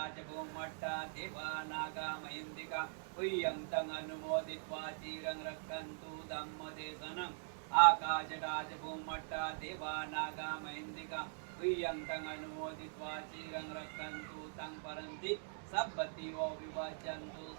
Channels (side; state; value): left; silent; digital silence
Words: भूमट्टा दिवानागमहिन्दिका प्रियं अनुमोदित्वा चिरं रक्षन्तु धम्मदेशनम् आकाशटाच भूमट्टा दिवानागमहिन्दिका प्रियं अनुमोदित्वा चिरं रक्षन्तु तं परन्ति सब्बतिवो विभजन्तु